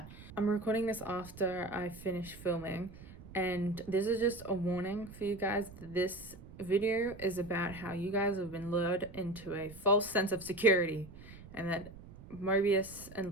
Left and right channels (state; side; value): noise; right; rumble, 17 dB below the sound